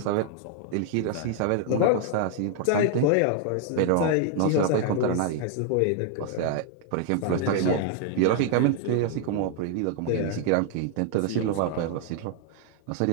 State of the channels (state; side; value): different; both; correlation 0.00